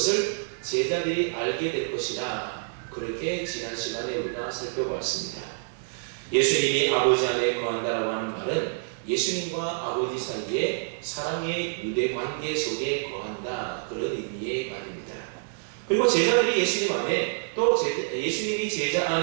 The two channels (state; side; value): silent; left; digital silence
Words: 제자들이 알게 될 것이다, 그렇게 지난 시간에 우리가 살펴보았습니다. 예수님이 아버지 안에 거한다라고 하는 말은 예수님과 아버지 사이에 사랑의 유대 관계 속에 거한다, 그런 의미의 말입니다. 그리고 제자들이 예수님 안에, 또 예수님이 제자